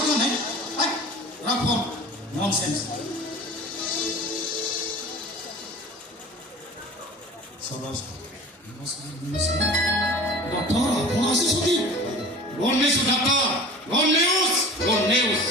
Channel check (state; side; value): normal; both; correlation 0.40